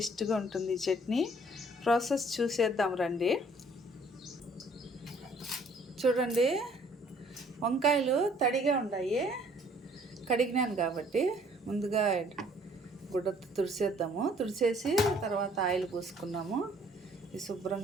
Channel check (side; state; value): both; normal; correlation 0.59